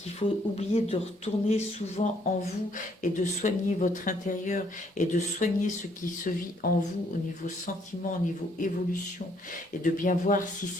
faut oublier de retourner souvent en vous et de soigner votre intérieur et de soigner ce qui se vit en vous au niveau sentiment, au niveau évolution et de bien voir si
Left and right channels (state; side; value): normal; both; correlation 0.67